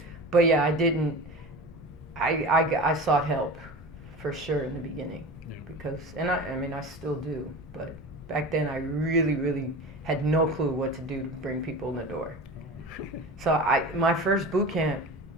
but yeah, I didn't. I sought help for sure in the beginning because, and I mean, I still do. But back then, I really, really had no clue what to do to bring people in the door. So my first boot camp,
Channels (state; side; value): normal; both; correlation 0.32